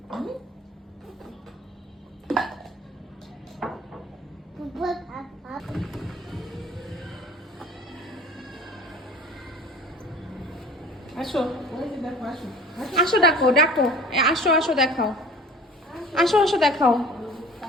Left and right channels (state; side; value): normal; both; correlation 0.44